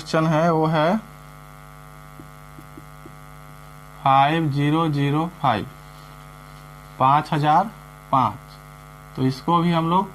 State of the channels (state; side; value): identical; both; correlation 1.00